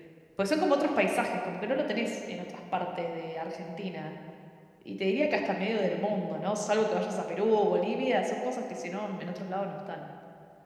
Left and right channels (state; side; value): identical; both; correlation 1.00